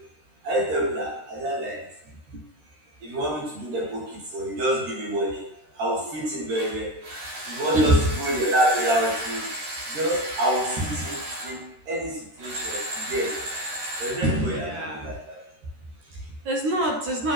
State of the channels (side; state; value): left; late; 13 ms